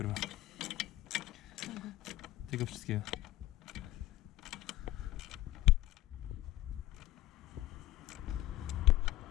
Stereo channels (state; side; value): quieter; right; 15.7 dB